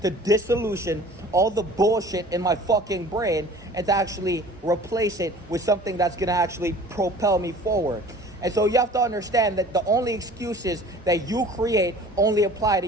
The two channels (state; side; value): normal; both; correlation 0.46